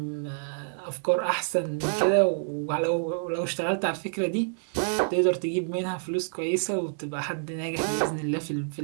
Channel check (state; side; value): silent; left; digital silence